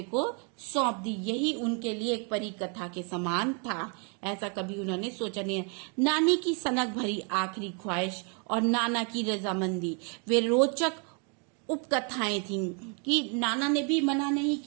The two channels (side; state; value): left; quieter; 37.2 dB